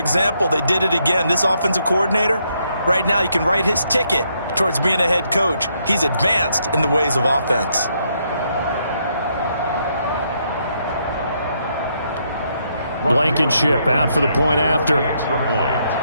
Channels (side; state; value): both; inverted; correlation -0.75